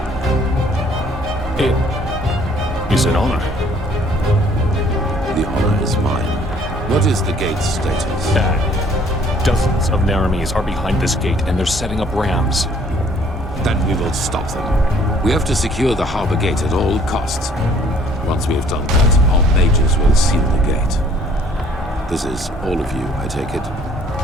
It is an honor. The honor is mine. What is the gate's status? Dozens of nehrimes are behind this gate, and they're setting up rams. Then we will stop them. We have to secure the harbor gate at all costs. Once we have done that, our mages will seal the gate. This is all of you, I take it?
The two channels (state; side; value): normal; both; correlation 0.59